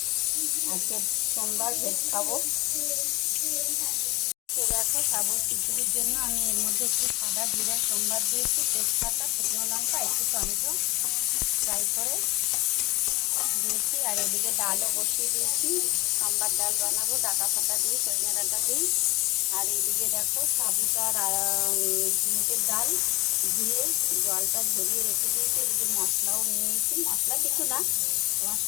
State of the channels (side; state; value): right; quieter; 22.2 dB